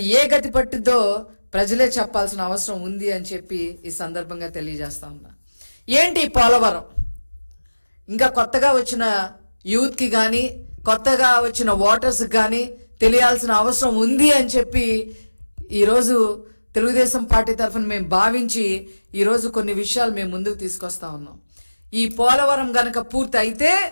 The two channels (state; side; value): inverted; both; correlation -1.00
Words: ఏ గతి పట్టిద్దో ప్రజలే చెప్పాల్సిన అవసరం ఉంది అని చెప్పి ఈ సందర్భంగా తెలియజేస్తా ఉన్నా. ఏంటి పోలవరం? ఇంకా కొత్తగా వచ్చిన యూత్కి కానీ కొత్తగా వచ్చిన ఓటర్స్కి కానీ తెలియాల్సిన అవసరం ఉంది అని చెప్పి ఈరోజు తెలుగుదేశం పార్టీ తరఫున మేము భావించి ఈరోజు కొన్ని విషయాలు మేము ముందుకు తీసుకొస్తా ఉన్నాం. ఈ పోలవరం గనక పూర్తి అయితే